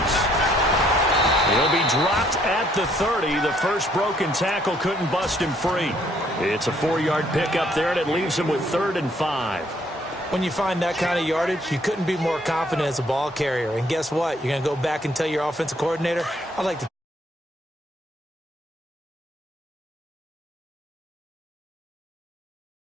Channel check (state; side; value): normal; both; correlation 0.66